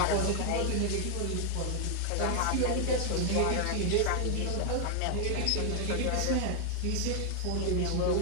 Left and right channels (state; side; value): different; both; correlation 0.00